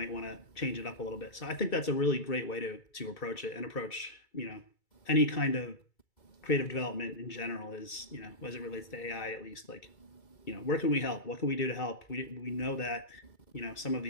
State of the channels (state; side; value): late; right; 2.3 ms